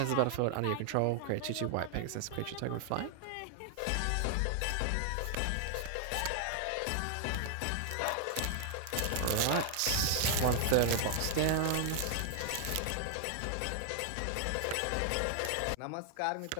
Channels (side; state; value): both; different; correlation 0.00